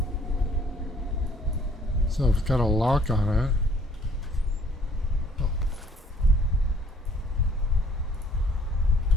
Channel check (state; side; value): normal; both; correlation 0.60